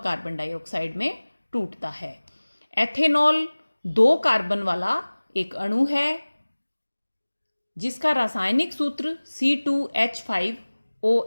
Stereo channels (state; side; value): inverted; both; correlation -1.00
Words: डाइऑक्साइड में टूटता है। एथेनॉल 2 कार्बन वाला एक अणु है जिसका रासायनिक सूत्र